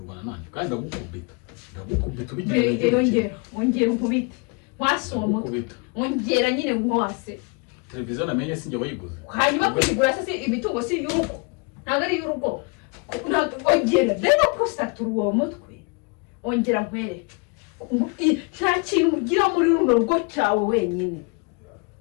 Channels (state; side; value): quieter; right; 31.4 dB